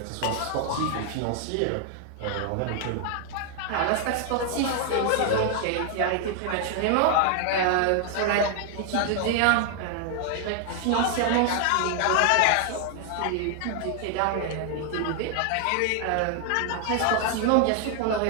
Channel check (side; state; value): both; different; correlation 0.00